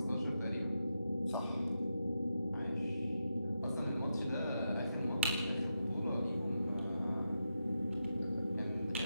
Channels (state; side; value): inverted; both; correlation -0.86